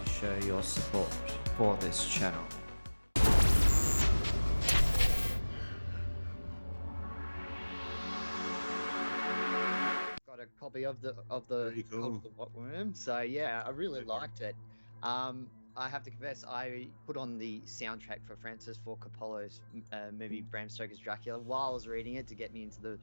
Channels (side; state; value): both; inverted; correlation -1.00